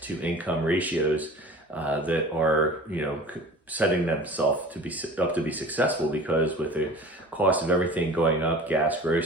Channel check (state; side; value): normal; both; correlation 0.41